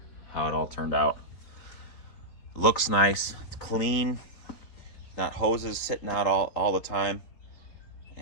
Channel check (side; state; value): right; late; 4.3 ms